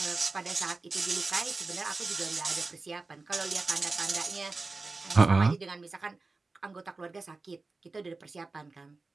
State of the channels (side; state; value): left; quieter; 3.7 dB